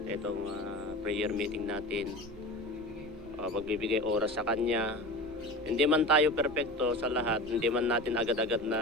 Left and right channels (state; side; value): normal; both; correlation 0.32